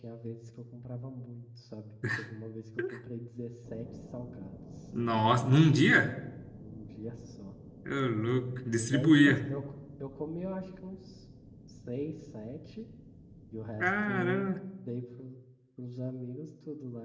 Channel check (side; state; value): both; identical; correlation 1.00